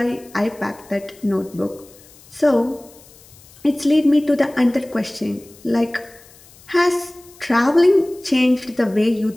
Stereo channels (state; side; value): noise; left; hiss, 25 dB below the sound